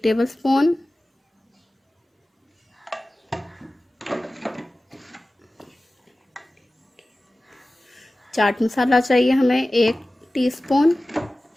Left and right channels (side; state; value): both; normal; correlation 0.96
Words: टेबलस्पून। चाट मसाला चाहिए हमें 1 टीस्पून।